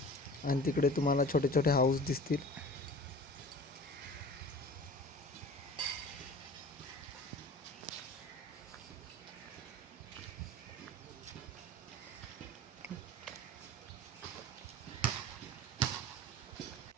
आणि तिकडे तुम्हाला छोटे छोटे हाऊस दिसतील.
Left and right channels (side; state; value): both; normal; correlation 0.40